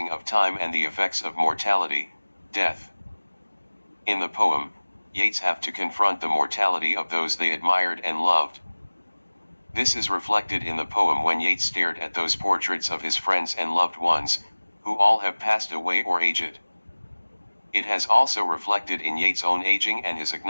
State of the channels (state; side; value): inverted; both; correlation -1.00